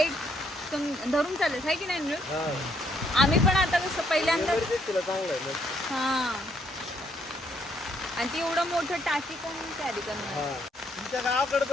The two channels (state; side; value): normal; both; correlation 0.71